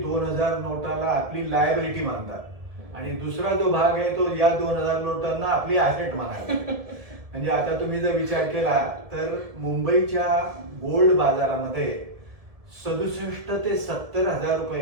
2000 नोटाला आपली लायबिलिटी मानतात आणि दुसरा जो भाग आहे तो या 2000 नोटांना आपली ऍसेट मानायला. म्हणजे आता तुम्ही जर विचार केला तर मुंबईच्या गोल्ड बाजारामध्ये 67 ते 70 हजार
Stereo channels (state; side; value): late; left; 1.7 ms